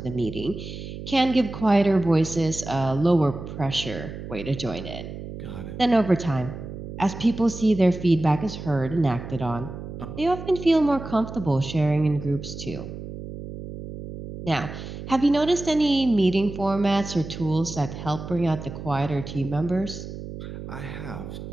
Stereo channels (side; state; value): right; noise; hum, 10 dB below the sound